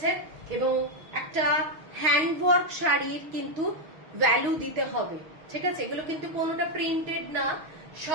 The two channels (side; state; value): left; late; 6.3 ms